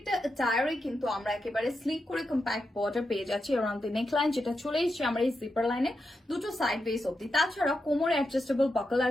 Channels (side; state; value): both; normal; correlation 0.87